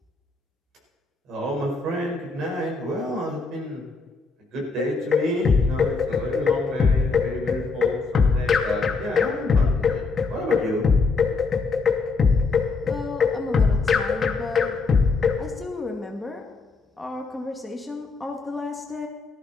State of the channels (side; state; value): right; quieter; 4.2 dB